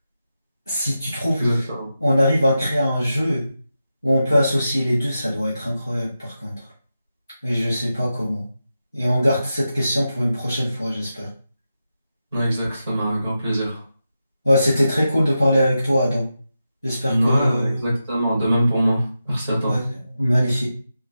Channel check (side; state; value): both; inverted; correlation -0.90